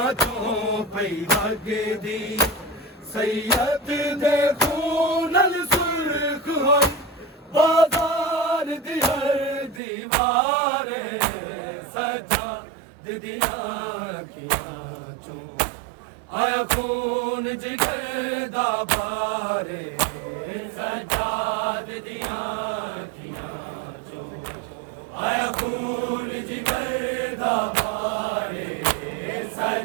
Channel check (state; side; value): drops out; left; at 9.8 s